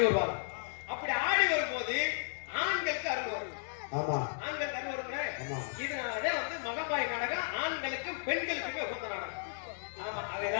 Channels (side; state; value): right; silent; digital silence